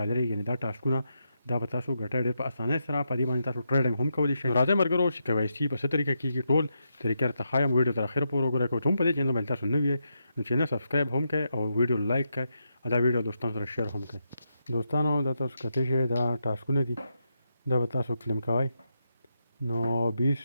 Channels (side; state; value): both; inverted; correlation -0.84